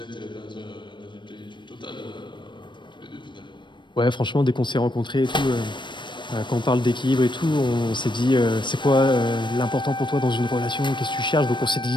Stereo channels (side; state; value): right; late; 0.22 ms